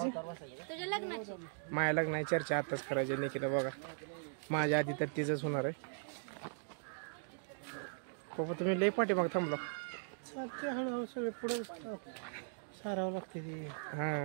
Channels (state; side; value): silent; left; digital silence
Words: माया लग्नाची चर्चा आताच करायची. निकिता बघा, माझ्या आधी तर तिचंच होणार आहे. पप्पा तुम्ही लय पाठीमाग थांबला. हळूहळू सगळे पुढे सारावं लागते ते.